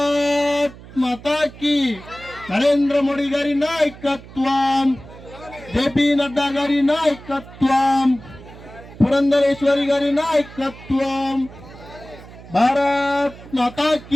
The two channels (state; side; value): noise; right; hum, 18 dB below the sound